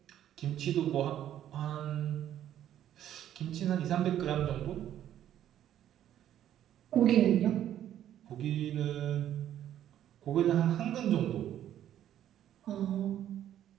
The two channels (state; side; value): quieter; left; 11.2 dB